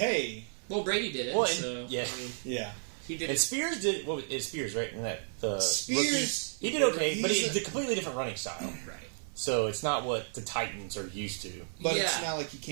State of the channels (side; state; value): left; silent; 56 dB below the other